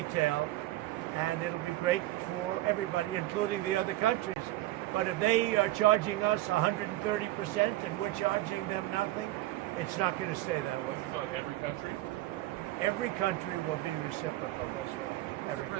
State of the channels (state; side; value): quieter; left; 16.5 dB